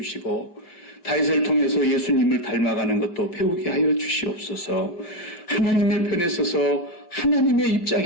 다윗을 통해서 예수님을 닮아가는 것도 배우게 하여 주시옵소서. 하나님의 편에 서서 하나님의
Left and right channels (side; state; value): right; late; 5.2 ms